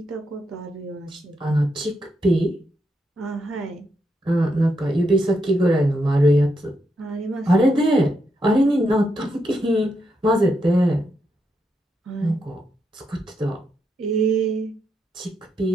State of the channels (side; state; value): both; normal; correlation 0.82